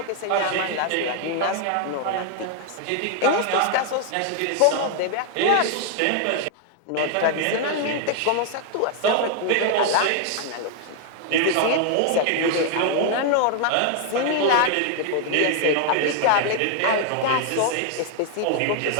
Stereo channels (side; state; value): both; different; correlation 0.00